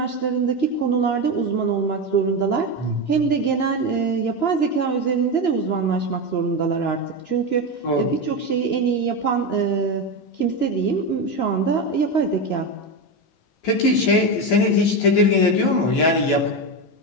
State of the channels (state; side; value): late; right; 13 ms